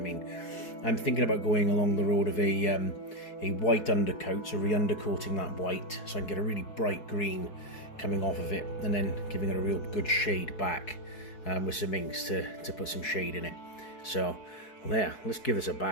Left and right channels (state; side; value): late; right; 4.7 ms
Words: I'm thinking about going along the road of a white undercoat, so re-undercoating that white so I can get a really bright green coming off of it, and then giving it a real good shade back with some inks to put some shade in it. So well, yeah, let's give this a